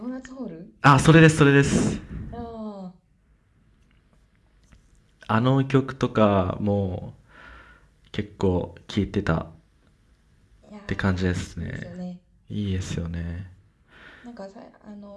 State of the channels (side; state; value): both; identical; correlation 1.00